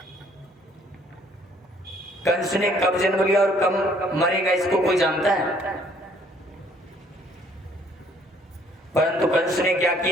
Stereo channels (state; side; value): normal; both; correlation 0.62